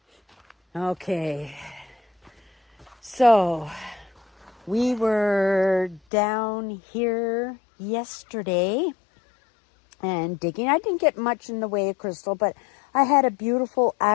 Okay. So we were down here yesterday and digging. I didn't get much in the way of crystal, but I had a beautiful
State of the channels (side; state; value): right; drops out; at 6.0 s